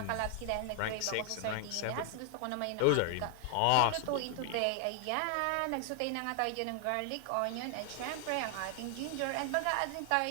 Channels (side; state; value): both; different; correlation 0.00